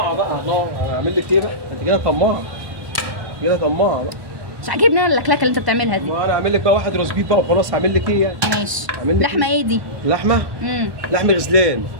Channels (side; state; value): left; late; 1.2 ms